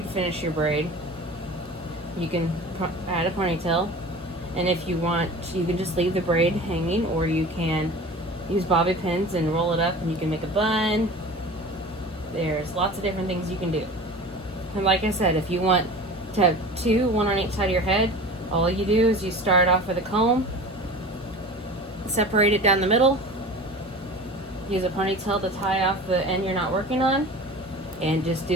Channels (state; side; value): normal; both; correlation 0.37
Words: finish your braid, you can add a ponytail, And if you want, you can just leave the braid hanging, or you can use bobby pins and roll it up and you can make a bun. There's lots of different things you can do. And like I said, if you want to have two, one on each side of your head, all you do is you start off with a comb, separate it down the middle, use a ponytail to tie off the end you're not working on, and just